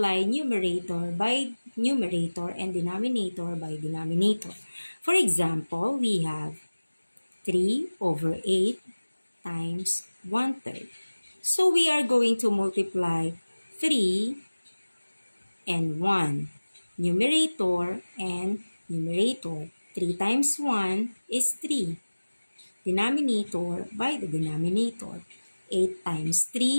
numerator by numerator and denominator by denominator. For example, we have 3 over 8 times 1/3. So we are going to multiply 3 and 1. Numerator and numerator. 3 times 1 is 3. Denominator by the denominator. 8 times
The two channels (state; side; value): inverted; both; correlation -1.00